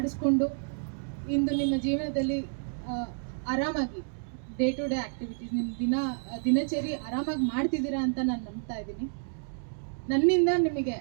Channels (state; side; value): silent; left; digital silence